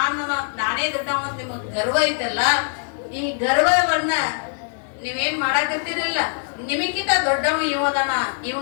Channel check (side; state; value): right; silent; digital silence